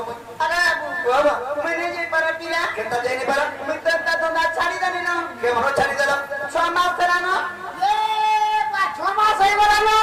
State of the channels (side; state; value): both; identical; correlation 1.00